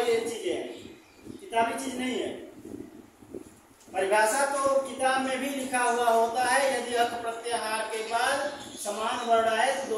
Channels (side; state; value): both; identical; correlation 1.00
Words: चीजें हैं, किताबी चीज नहीं है। परिभाषा तो किताब में भी लिखा हुआ होता है, यदि अक प्रत्याहार के बाद समान वर्ण आए तो